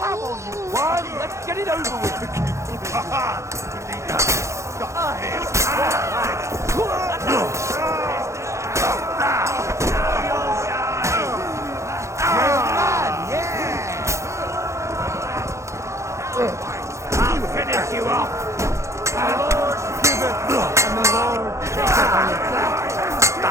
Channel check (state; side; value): late; left; 0.14 ms